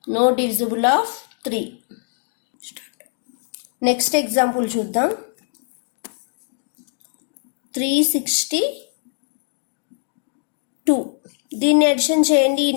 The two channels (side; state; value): right; silent; 58 dB below the other